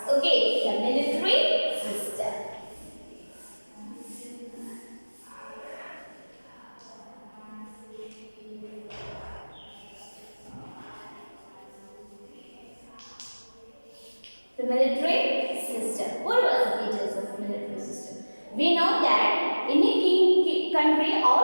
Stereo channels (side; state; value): both; inverted; correlation -1.00